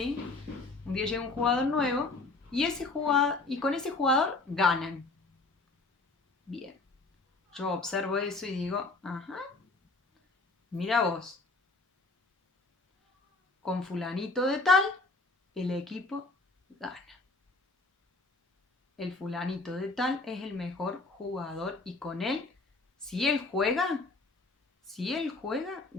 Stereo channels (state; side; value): quieter; right; 3.4 dB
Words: Un día llega un jugador nuevo y con ese jugador ganan. Bien. Yo observo eso y digo, ajá, mira vos, con fulanito de tal, el equipo gana. El fulanito de tal es el mejor jugador y con él, si él juega,